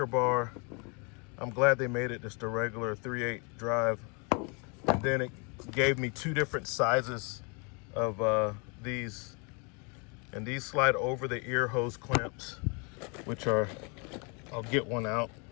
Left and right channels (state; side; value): quieter; right; 34.1 dB